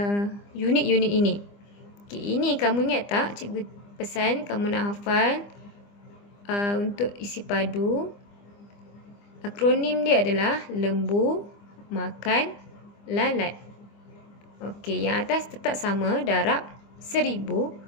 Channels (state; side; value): late; right; 25 ms